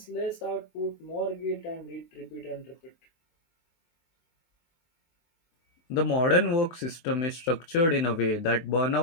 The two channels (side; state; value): right; late; 23 ms